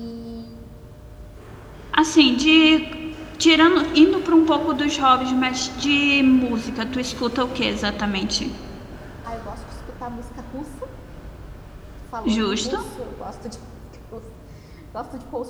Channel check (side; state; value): both; identical; correlation 1.00